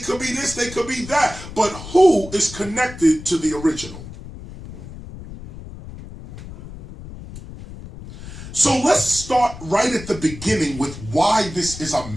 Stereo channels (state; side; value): noise; left; rumble, 13 dB below the sound